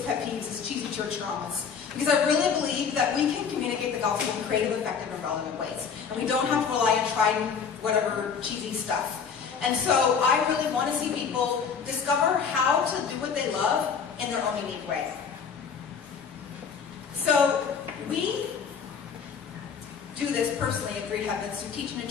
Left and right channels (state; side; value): quieter; right; 6.4 dB